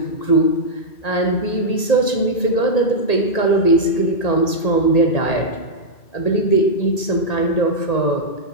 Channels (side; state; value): right; late; 1.8 ms